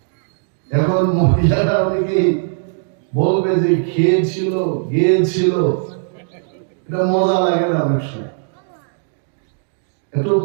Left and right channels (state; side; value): silent; left; digital silence